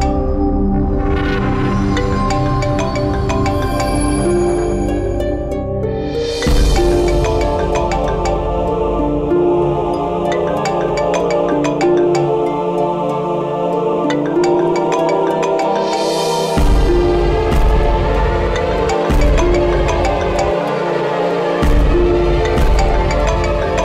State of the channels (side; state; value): both; identical; correlation 1.00